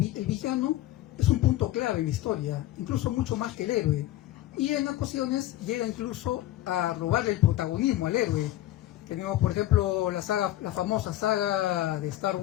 villano es un punto clave en la historia, incluso mucho más que el héroe. Y en ocasiones llega incluso a robarle el protagonismo al héroe. Tenemos, por ejemplo, la famosa saga de Star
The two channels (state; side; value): quieter; right; 14.7 dB